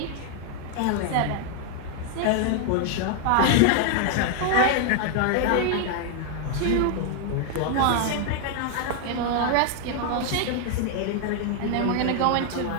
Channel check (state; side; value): different; both; correlation 0.00